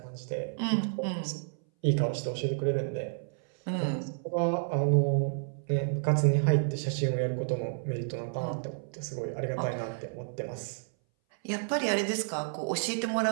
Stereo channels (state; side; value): silent; left; 57 dB below the other